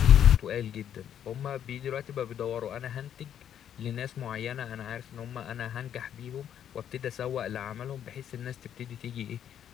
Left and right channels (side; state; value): right; quieter; 9.6 dB